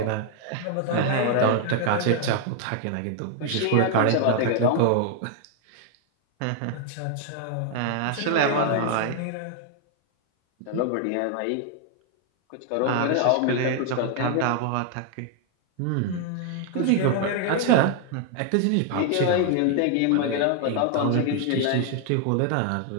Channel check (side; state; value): both; different; correlation 0.00